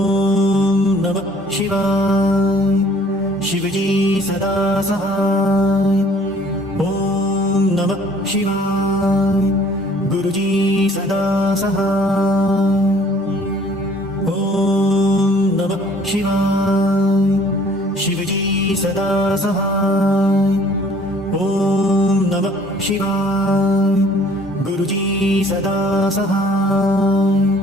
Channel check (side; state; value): both; normal; correlation 0.56